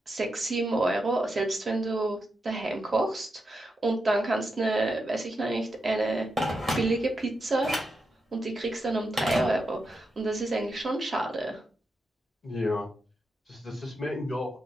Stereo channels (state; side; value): normal; both; correlation 0.86